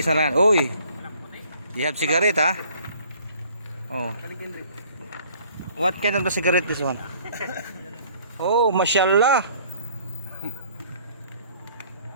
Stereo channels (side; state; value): both; inverted; correlation -0.57